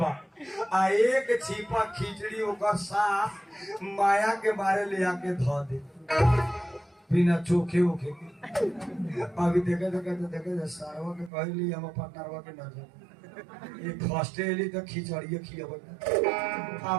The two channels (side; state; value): left; drops out; at 11.3 s